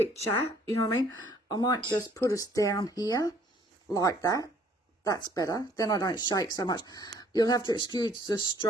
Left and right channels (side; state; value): both; normal; correlation 0.60